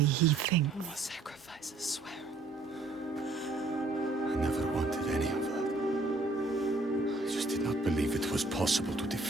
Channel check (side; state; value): left; quieter; 3.2 dB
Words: he thinks. No more sacrifices, swear. I never wanted any of that. I just did not believe it was possible to